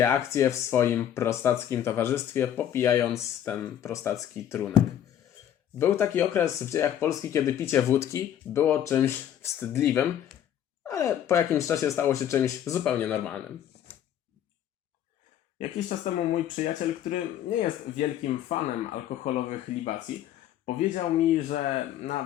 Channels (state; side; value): quieter; right; 10.5 dB